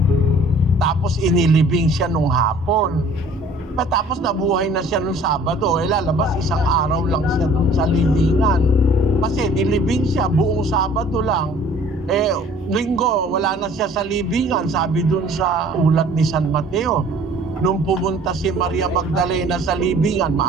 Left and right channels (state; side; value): normal; both; correlation 0.52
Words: Tapos inilibing siya nung hapon. Tapos nabuhay na siya nung Sabado. Lalabas isang araw lang siya dun sa libingan. Kasi nilibing siya buong Sabado lang. Linggo, wala na siya sa libingan. Sabi dun sa ulat ni San Mateo. Nung pumunta si Maria Magdalena sa libingan,